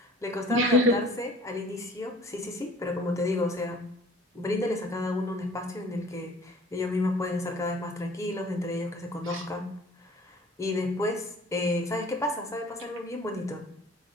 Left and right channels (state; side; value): normal; both; correlation 0.50